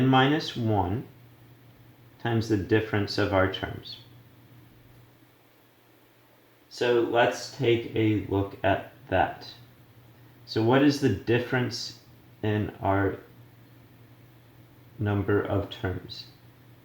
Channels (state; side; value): identical; both; correlation 1.00